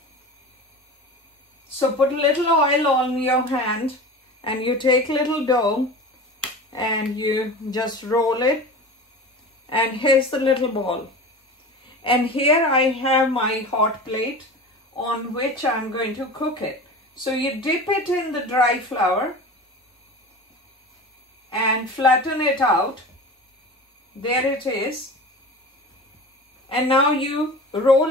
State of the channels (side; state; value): both; normal; correlation 0.33